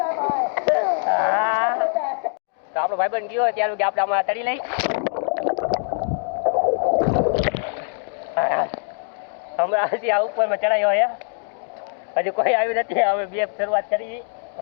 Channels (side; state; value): right; silent; digital silence